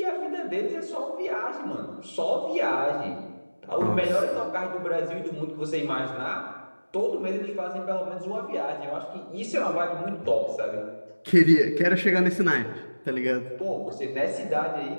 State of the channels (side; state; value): both; inverted; correlation -1.00